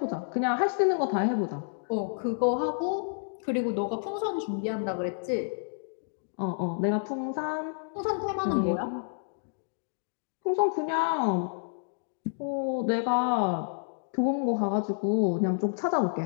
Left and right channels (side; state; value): right; silent; digital silence